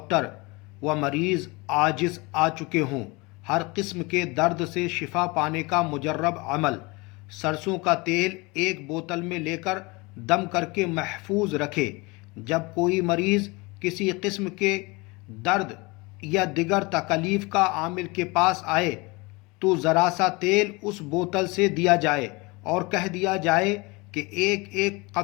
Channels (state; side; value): quieter; right; 25.5 dB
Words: و مریض عاجز آ چکے ہوں، ہر قسم کے درد سے شفا پانے کا مجرب عمل، سرسوں کا تیل ایک بوتل میں لے کر دم کر کے محفوظ رکھے۔ جب کوئی مریض کسی قسم کے درد یا دیگر تکلیف کا عامل کے پاس آئے تو ذرا سا تیل اس بوتل سے دیا جائے اور کہہ دیا جائے کہ ایک ایک